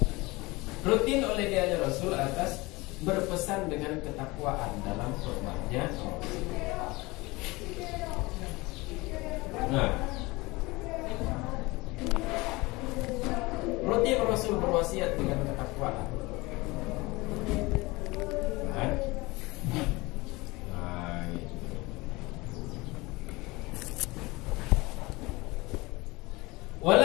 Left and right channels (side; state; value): right; quieter; 22.8 dB